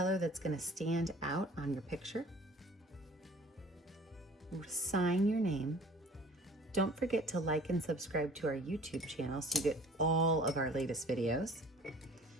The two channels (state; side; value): normal; both; correlation 0.49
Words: that's going to stand out on your picture. sign your name. Don't forget to like and subscribe to our YouTube channel so you get all of our latest videos.